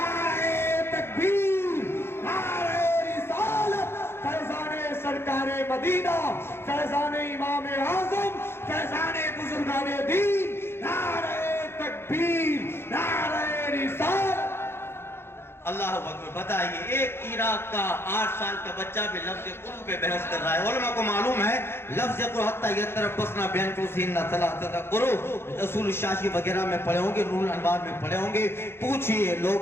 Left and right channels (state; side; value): late; right; 0.12 ms